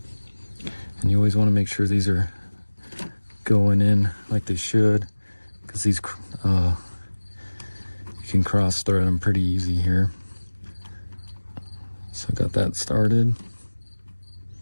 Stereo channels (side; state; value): both; inverted; correlation -1.00